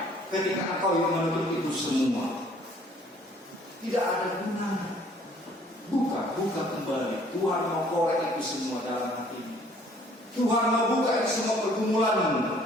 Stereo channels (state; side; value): normal; both; correlation 0.58